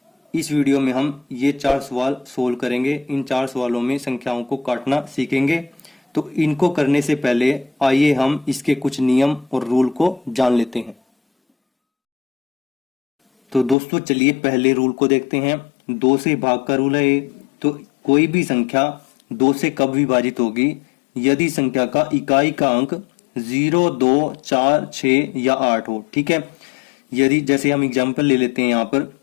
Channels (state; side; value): drops out; right; at 13.8 s